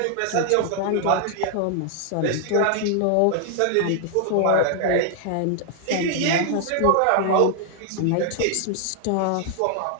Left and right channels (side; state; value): both; different; correlation 0.00